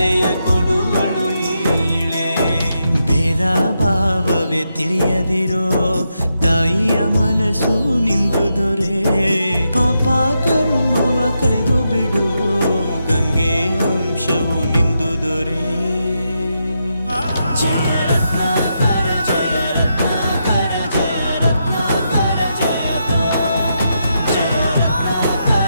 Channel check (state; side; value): inverted; both; correlation -0.83